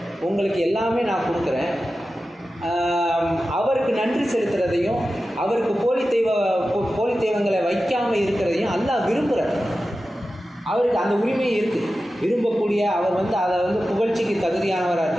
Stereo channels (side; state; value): both; normal; correlation 0.93